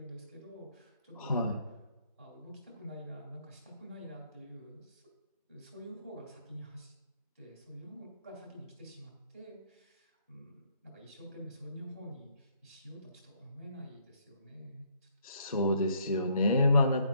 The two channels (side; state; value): both; inverted; correlation -0.68